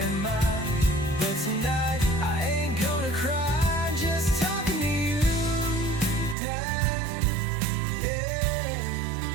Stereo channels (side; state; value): left; drops out; at 6.4 s